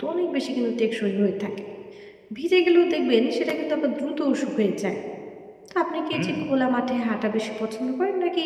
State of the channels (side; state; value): both; identical; correlation 1.00